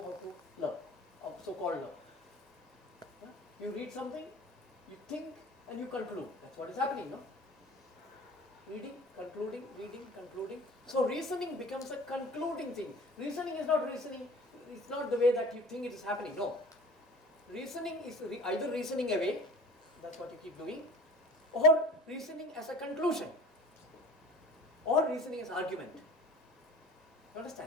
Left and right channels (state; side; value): normal; both; correlation 0.42